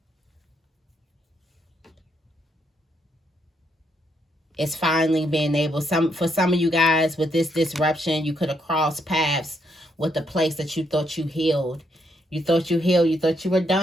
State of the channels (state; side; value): normal; both; correlation 0.76